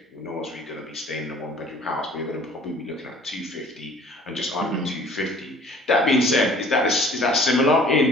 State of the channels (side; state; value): both; normal; correlation 0.52